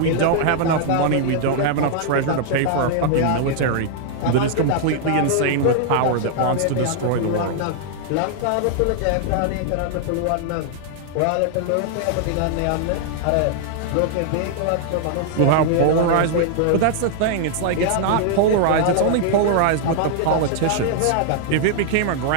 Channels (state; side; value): different; both; correlation -0.01